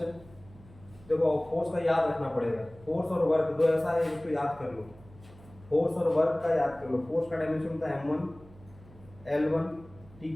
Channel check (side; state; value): right; noise; hum, 22 dB below the sound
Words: देखो फोर्स का याद रखना पड़ेगा। फोर्स और वर्क दो ऐसा है जिसको याद कर लो। फोर्स और वर्क का याद कर लो। फोर्स का डायमेंशन होता है m1 L1 t